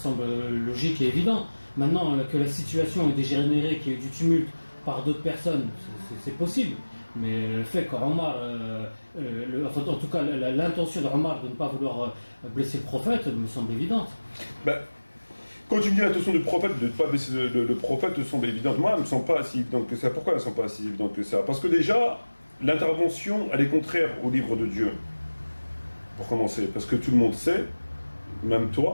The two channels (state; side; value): inverted; both; correlation -1.00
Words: logique et évident. Maintenant que la situation est dégénérée, qu'il y ait eu du tumulte par d'autres personnes, c'est possible. Mais le fait qu'Omar, en tout cas l'intention d'Omar de ne pas vouloir blesser le prophète me semble évidente. Quand tu me dis l'intention du prophète de ne pas blesser le prophète, me semble évidente. Moi, elle ne me semble pas si évidente que ça. Pourquoi elle ne me semble pas si évidente que ça? Parce que déjà, l'intervention, elle est contraire au livre de Dieu. Pour commencer, parce que tout le monde sait, même